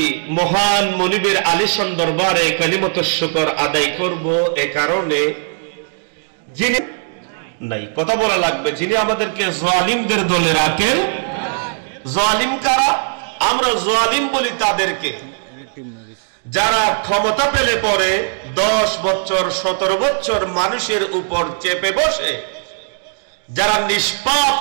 মহান মনিবের আলিশান দরবারে কালিমাতুশ শুকর আদায় করব। এ কারণে যিনি নাই কথা বলা লাগবে, যিনি আমাদেরকে জালিমদের দলে রাখেন। জালিম কারা? আমরা জালিম বলি তাদেরকে যারা ক্ষমতা পেলে পরে 10 বছর 17 বছর মানুষের উপর চেপে বসে, যারা নিষ্পাপ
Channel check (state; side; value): silent; left; digital silence